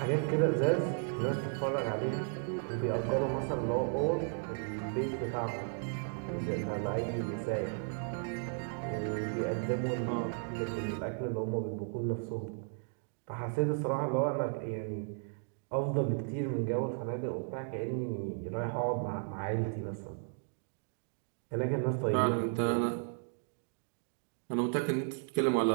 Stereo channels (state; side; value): silent; left; 55 dB below the other